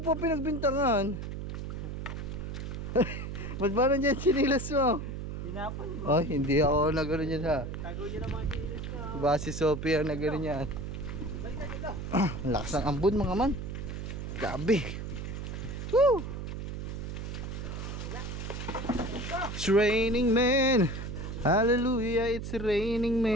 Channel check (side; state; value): right; noise; hum, 6 dB below the sound